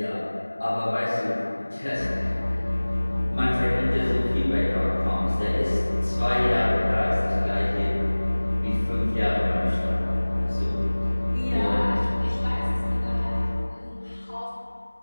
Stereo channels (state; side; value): inverted; both; correlation -1.00